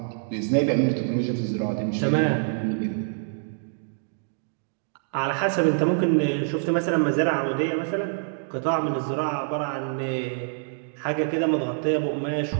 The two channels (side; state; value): left; silent; digital silence